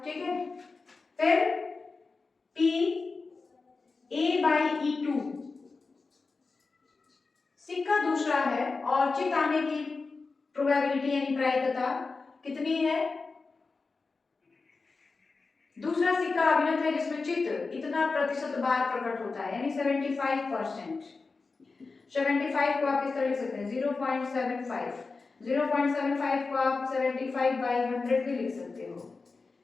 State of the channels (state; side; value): quieter; right; 4.1 dB